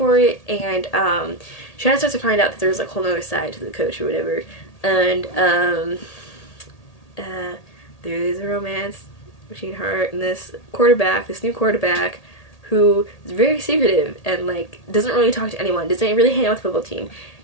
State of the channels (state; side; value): late; right; 1.8 ms